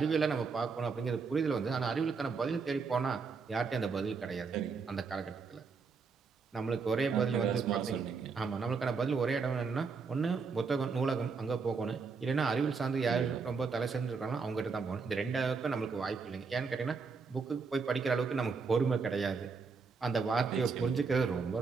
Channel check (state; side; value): quieter; left; 5.0 dB